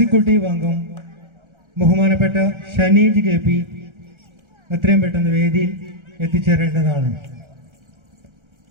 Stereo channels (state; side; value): late; left; 1.3 ms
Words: അംഗം ബഹുമാനപ്പെട്ട ഷനീജ് KP എത്രയും പെട്ടെന്ന് വേദിയിൽ എത്തിച്ചേരേണ്ടതാണ്.